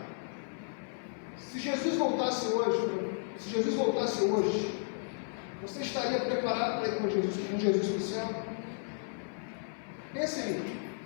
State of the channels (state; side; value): silent; right; 55 dB below the other